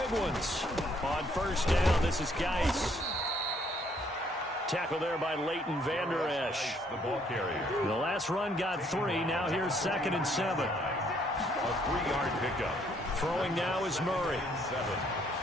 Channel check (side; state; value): both; normal; correlation 0.67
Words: ones. On first down, this is Geis. Tackle there by Leighton Vander Esch. The ball carrier. The last run got 3. Now here's 2nd and 7. A 3-yard pickup. Throwing now is Murray.